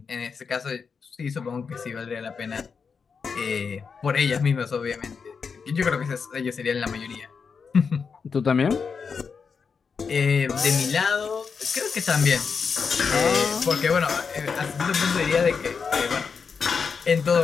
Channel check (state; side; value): quieter; right; 5.7 dB